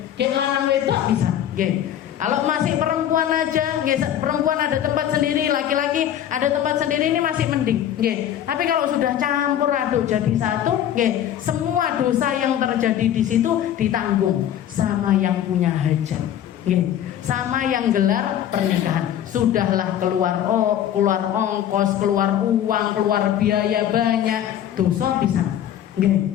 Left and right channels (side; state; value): right; quieter; 10.7 dB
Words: Nggih, lanang wedok bisa, nggih. Kalau masih perempuan aja, nggih, perempuan ada tempat sendiri, laki-laki ada tempat sendiri, ini masih mending, nggih. Tapi kalau sudah campur aduk jadi satu, nggih, semua dosa yang terjadi di situ ditanggung sama yang punya hajat, nggih, sama yang gelar pernikahan. Sudahlah keluar ongkos, keluar uang, keluar biaya banyak, dosa bisa, nggih.